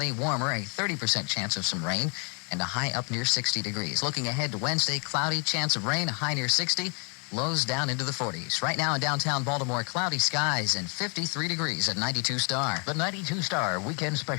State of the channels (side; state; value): right; quieter; 36.6 dB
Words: warmer, a 30% chance of some rain, and a high up near 60 degrees. Looking ahead to Wednesday, cloudy, chance of rain, a high near 60. Lows down into the 40s. Right now in downtown Baltimore, cloudy skies and 53 degrees at 92 Star. The 92 Star Weekend